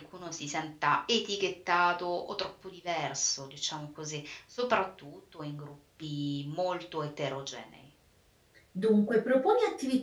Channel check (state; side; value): identical; both; correlation 1.00